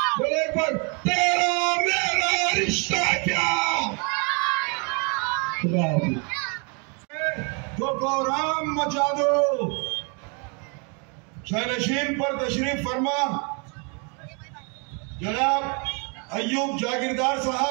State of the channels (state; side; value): quieter; left; 35.1 dB